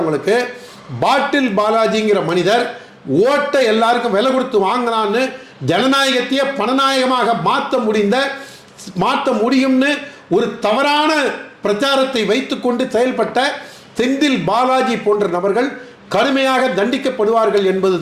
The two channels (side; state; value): both; identical; correlation 1.00